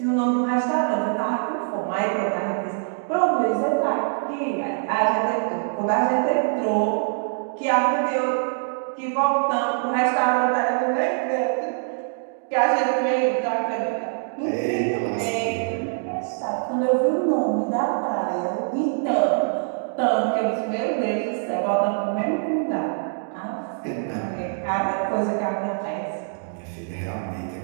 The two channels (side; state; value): left; silent; digital silence